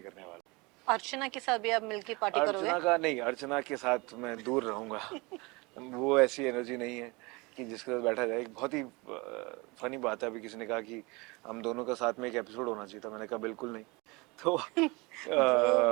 करने वाला अर्चना के साथ भी आप मिलके पार्टी हूँ। करोगे? अर्चना का नहीं, अर्चना के साथ मैं दूर रहूँगा। वो ऐसी एनर्जी नहीं है कि जिसके साथ बैठा जाए। एक बहुत ही फनी बात है, अभी किसी ने कहा कि हम दोनों का साथ में एक एपिसोड होना चाहिए था, मैंने कहा बिल्कुल नहीं। तो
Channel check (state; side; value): quieter; left; 25.7 dB